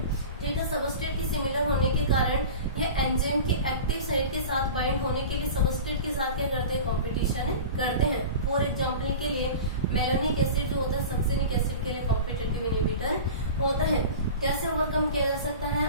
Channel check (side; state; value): both; inverted; correlation -0.34